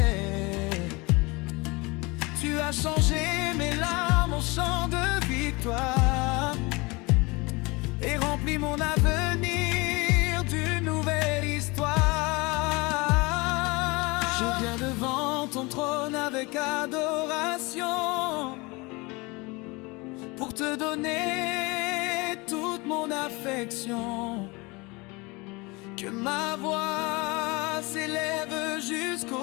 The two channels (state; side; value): quieter; right; 25.5 dB